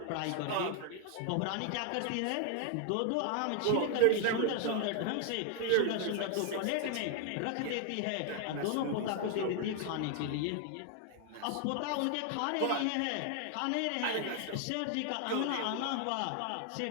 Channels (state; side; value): different; both; correlation 0.00